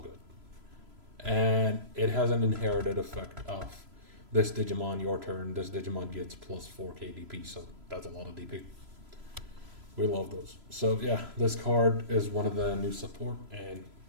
And it has an inherited effect of this Digimon, your turn, this Digimon gets plus 4k DP, so that's a lot of DP. We love those. So yeah, this card is one of the new support, and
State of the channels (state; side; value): late; left; 3.0 ms